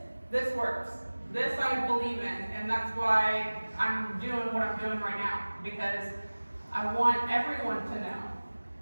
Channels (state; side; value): inverted; both; correlation -1.00